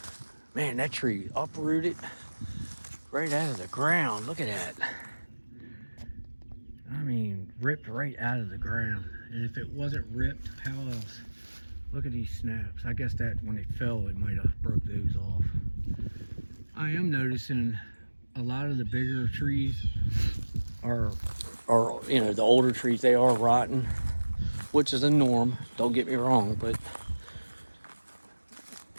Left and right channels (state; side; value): inverted; both; correlation -1.00